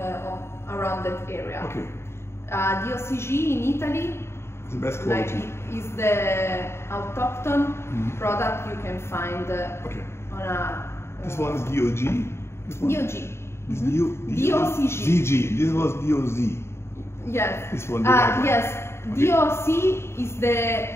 around that area. Okay. The OCG in Italy, The best like quality. is the autochthon product you can find Okay. on a This one is DOG. This one? DOG. This DOCG. DG. This was DOZ. Yes. This one. the white one. Yes. Okay. DOC is the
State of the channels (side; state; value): right; late; 0.12 ms